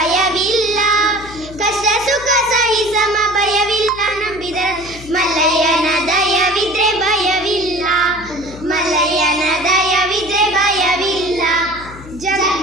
ಕಷ್ಟ ಸುಖ ಸಹಿ ಸಮ ಭಯವಿಲ್ಲ ನಂಬಿದರು ಮಲ್ಲಯ್ಯನ ದಯವಿದ್ರೆ ಭಯವಿಲ್ಲ. ಮಲ್ಲಯ್ಯನ ದಯವಿದ್ರೆ ಭಯವಿಲ್ಲ.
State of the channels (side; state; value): left; noise; hum, 17 dB below the sound